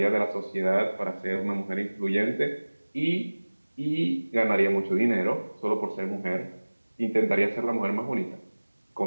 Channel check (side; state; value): both; inverted; correlation -1.00